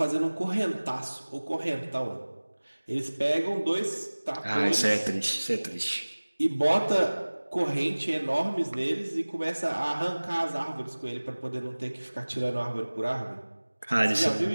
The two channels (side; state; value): both; inverted; correlation -1.00